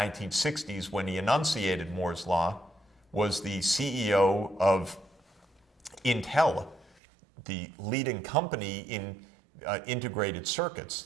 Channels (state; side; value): drops out; left; at 7.0 s